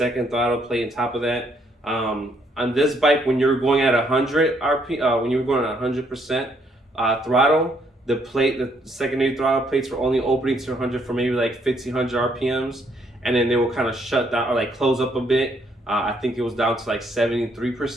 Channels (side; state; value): both; normal; correlation 0.70